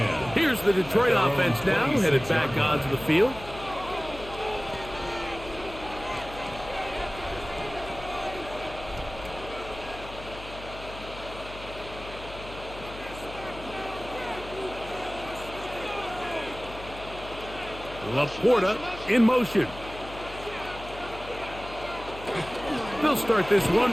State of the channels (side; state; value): left; noise; hum, 14 dB below the sound